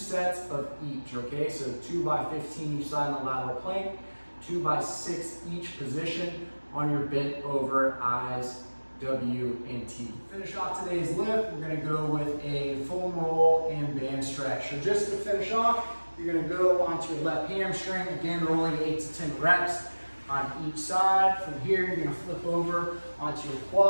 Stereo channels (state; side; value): inverted; both; correlation -1.00